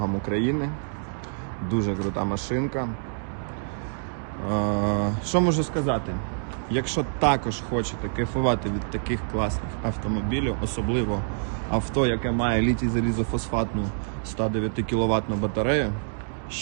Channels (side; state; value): left; silent; digital silence